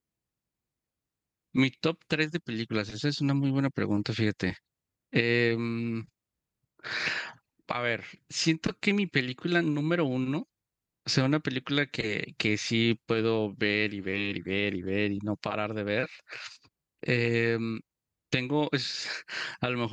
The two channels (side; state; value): both; identical; correlation 1.00